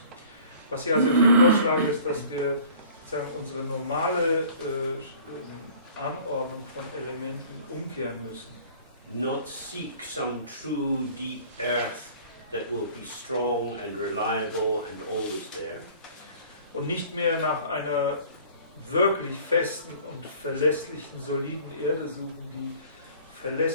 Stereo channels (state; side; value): inverted; both; correlation -0.49